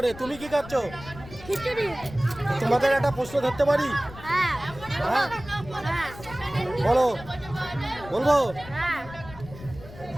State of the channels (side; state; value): left; noise; rumble, 16 dB below the sound